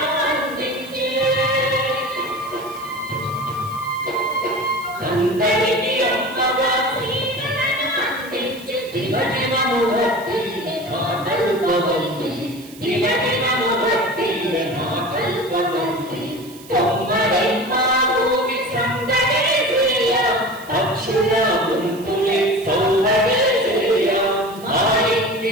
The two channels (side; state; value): right; noise; hiss, 20 dB below the sound